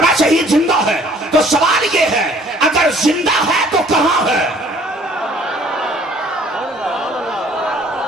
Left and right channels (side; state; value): both; normal; correlation 0.56